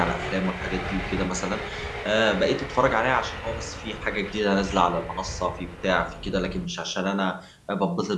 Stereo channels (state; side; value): identical; both; correlation 1.00